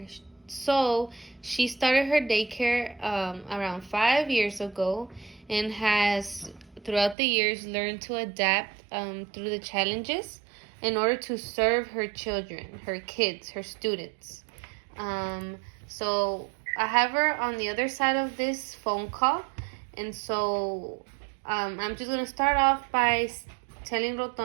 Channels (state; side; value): drops out; left; at 7.2 s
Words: So she started her daycare around 5 years ago, and has throughout the years learned to adapt through the challenges in order to serve her children, her kids, her students. So I have her on the other side of this phone call, and so I'm just gonna start off by telling